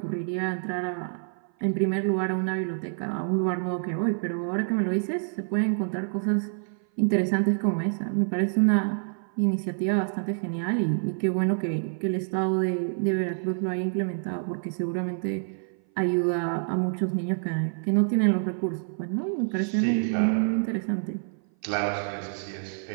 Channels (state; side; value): silent; left; 57 dB below the other